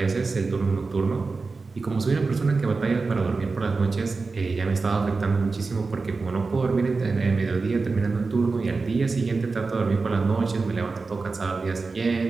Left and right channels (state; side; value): quieter; left; 4.1 dB